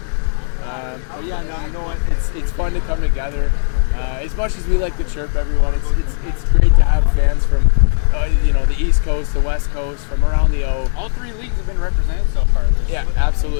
But yeah, no, you know what? It's fun to come together. As much as we like to chirp everyone, it's great to have fans from the East Coast, the West Coast, from around the O. All three leagues have been represented so far. Yeah,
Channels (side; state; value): right; silent; digital silence